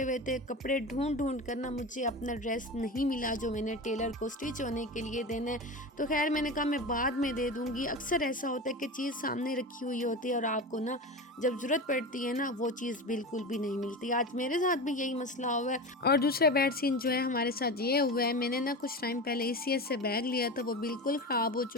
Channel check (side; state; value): both; normal; correlation 0.26